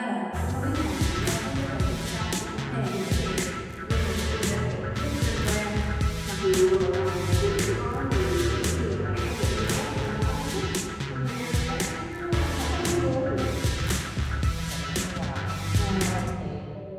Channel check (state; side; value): identical; both; correlation 1.00